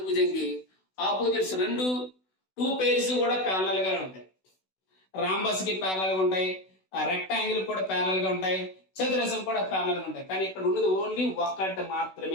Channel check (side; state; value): right; late; 16 ms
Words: ఆపోజిట్స్ టూ పేర్స్ కూడా ప్యారలల్ గా ఉంటాయి. రాంబస్ కి ప్యారలల్ గా ఉంటాయి, రెక్టాంగిల్ కూడా ప్యారలల్ గా ఉంటాయి, చతురస్రం కూడా ప్యారలల్ గా ఉంటాయి. కానీ ఇక్కడ ఉన్నది ఓన్లీ ఒకటి